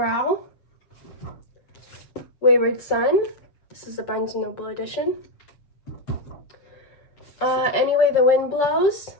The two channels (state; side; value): late; right; 7.5 ms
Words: Wayward Son. This is the Barnes & Noble edition. Anyway the Wind Blows.